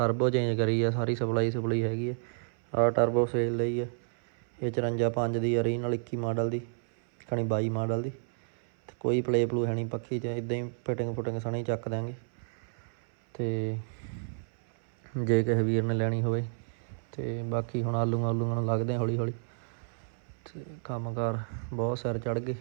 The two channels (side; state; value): left; silent; 57 dB below the other